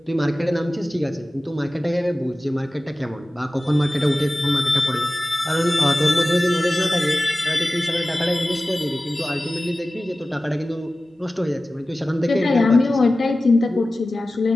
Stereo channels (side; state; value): both; normal; correlation 0.96